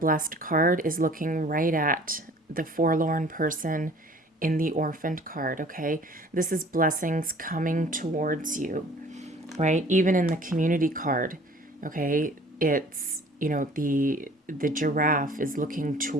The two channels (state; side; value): normal; both; correlation 0.51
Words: card is looking right at the forlorn person in the orphaned card, okay? This is blessings coming towards you, right? Even in the community card, okay? It's, the giraffe is looking